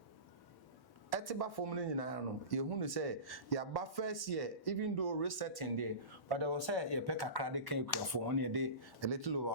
etiba from ni nyina no ye hu no say ya ba first year even though resetting there but there was say ye pe kakra de kan ekuafo on ye de a little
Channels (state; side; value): late; right; 1.1 ms